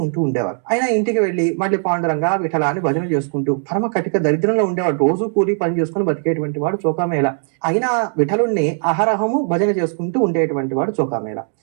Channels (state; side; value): silent; left; 56 dB below the other